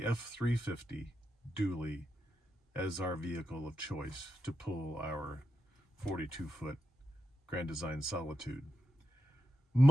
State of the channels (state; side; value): normal; both; correlation 0.86